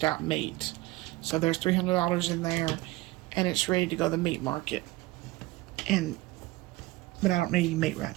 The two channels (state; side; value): quieter; left; 19.8 dB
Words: out meat. So there's $300 in there, and it's ready to go to the meat market. But I don't need any meat right